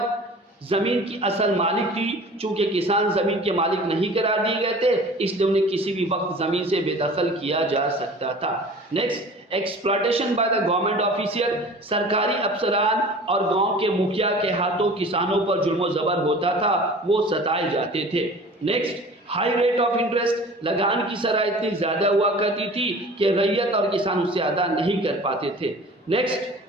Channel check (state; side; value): normal; both; correlation 0.42